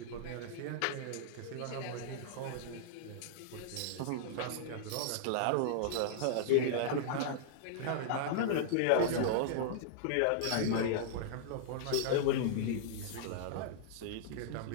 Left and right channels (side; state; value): both; different; correlation -0.02